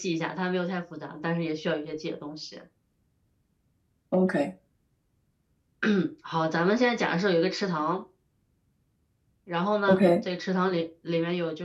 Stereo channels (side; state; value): both; identical; correlation 1.00